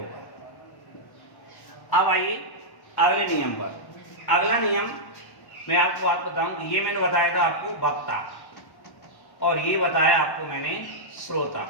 अब आइए अगले नियम पर। अगला नियम मैं आपको बात बताऊं, ये मैंने बताया था आपको वक्ता, और ये बताया आपको मैंने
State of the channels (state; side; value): late; right; 1.1 ms